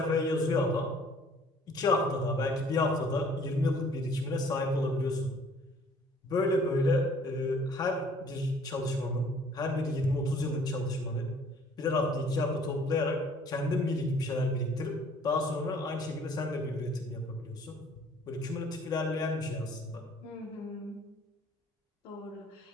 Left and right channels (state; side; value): normal; both; correlation 0.57